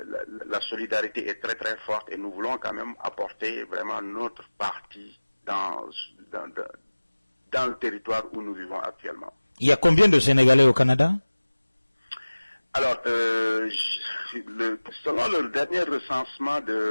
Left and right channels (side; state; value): both; inverted; correlation -1.00